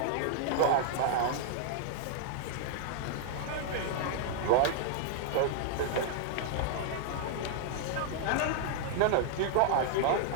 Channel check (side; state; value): both; different; correlation -0.01